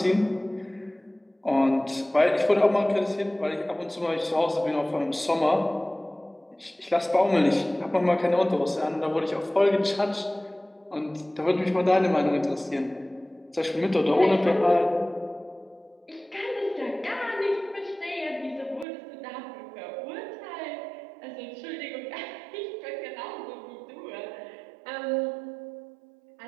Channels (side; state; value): left; drops out; at 18.9 s